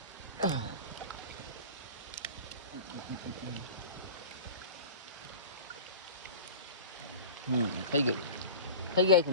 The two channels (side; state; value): both; inverted; correlation -0.36